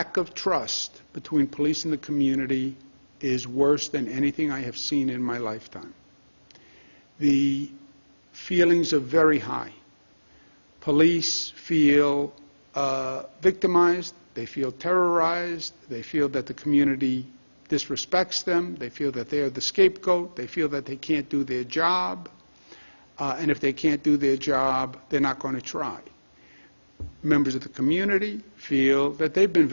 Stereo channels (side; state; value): both; inverted; correlation -1.00